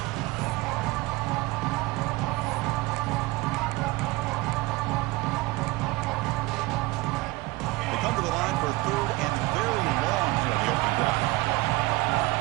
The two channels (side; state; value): left; quieter; 21.3 dB